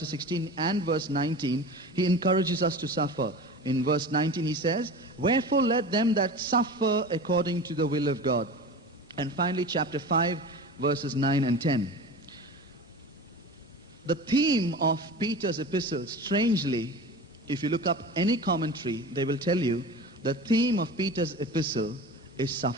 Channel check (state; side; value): normal; both; correlation 0.33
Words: 16 and verse 19, he encourages us to suffer. In verse 19 he says, wherefore let them that suffer according to the will of God. And finally chapter 5, verses 9 and 10. The theme of Peter's epistle, strangely, if you look up any commentary, they will tell you the theme of Peter's epistle is